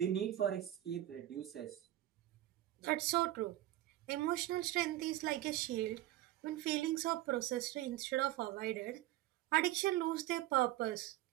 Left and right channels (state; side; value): quieter; left; 14.8 dB